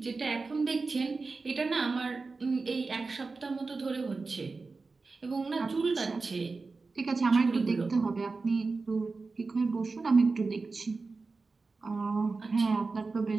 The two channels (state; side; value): quieter; left; 4.0 dB